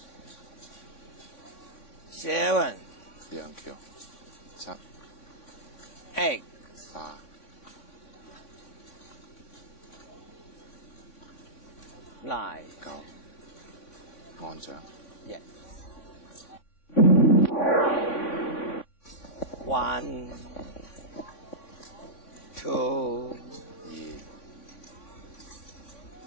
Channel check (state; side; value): late; right; 3.6 ms